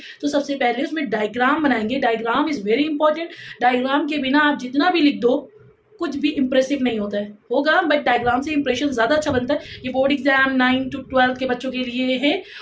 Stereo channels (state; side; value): identical; both; correlation 1.00